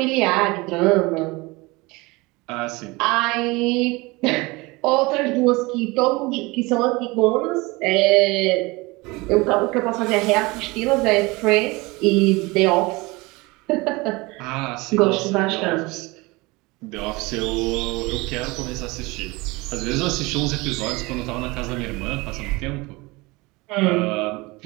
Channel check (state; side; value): quieter; left; 23.7 dB